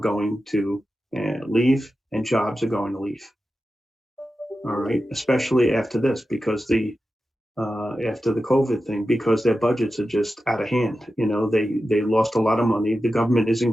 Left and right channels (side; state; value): both; normal; correlation 0.92